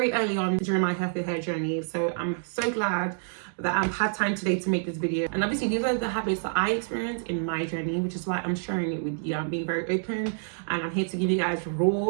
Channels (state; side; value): silent; left; digital silence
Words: early on during my healthy hair journey. So I'm so glad that I've had time today to make this video. And obviously these are the habits that I experienced in my journey, which is why I'm sharing it with you. I'm being very open and I'm here to give you guys